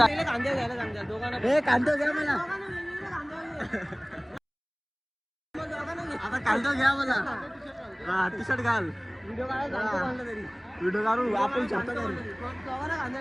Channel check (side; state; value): both; identical; correlation 1.00